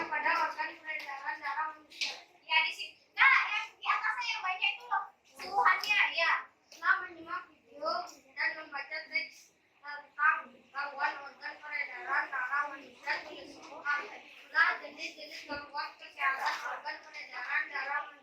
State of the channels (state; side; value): identical; both; correlation 1.00